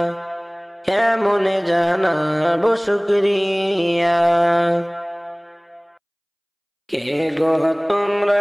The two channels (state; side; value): identical; both; correlation 1.00